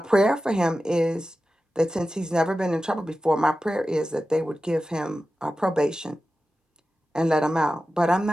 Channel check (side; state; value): both; normal; correlation 0.93